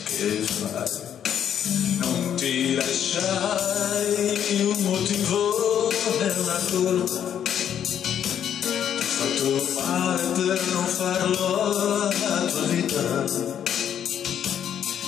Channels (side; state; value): right; quieter; 9.4 dB